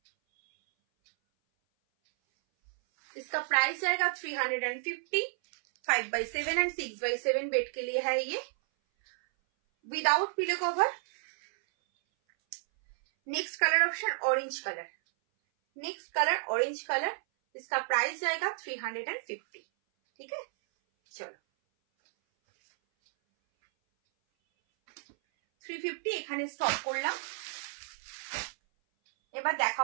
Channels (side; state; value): left; silent; 57 dB below the other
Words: इसका प्राइस जाएगा 350। 5/7 एंड 6/7 बेड के लिए है ये, without pillow cover. Next colour option orange colour. Next colour orange colour. इसका प्राइस जाएगा 350। ठीक है, चलो 350 এখানে স্টপ করলাম। এবার